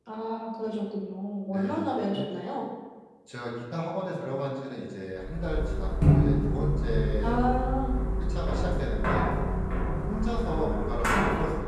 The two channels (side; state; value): both; identical; correlation 1.00